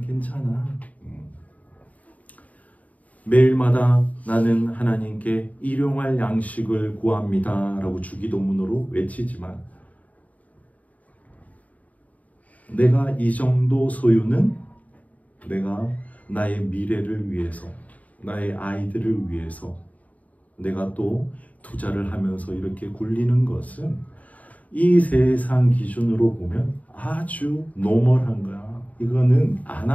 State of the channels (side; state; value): right; late; 0.072 ms